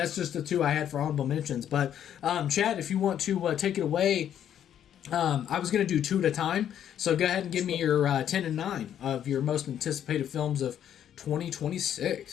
just the 2 I had for honorable mentions. But Chad, if you want to take it away. I was going to do 2 at a time. So go ahead and give me your 10 and 9 of your most anticipated films of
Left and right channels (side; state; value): right; quieter; 10.0 dB